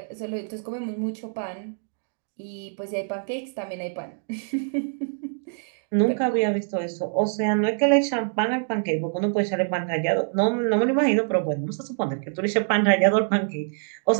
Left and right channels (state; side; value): silent; left; 62 dB below the other